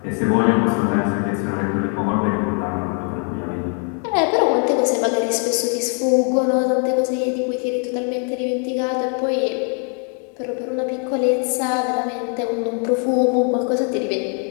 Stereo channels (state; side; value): quieter; right; 38.7 dB